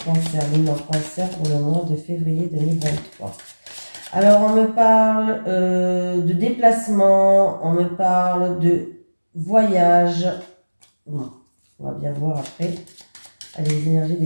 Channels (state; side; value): inverted; both; correlation -1.00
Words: cancer, lune en cancer pour le mois de février 2023. Alors, on me parle de déplacement, on me parle de voyage. Bon, on va bien voir après. Allez, les énergies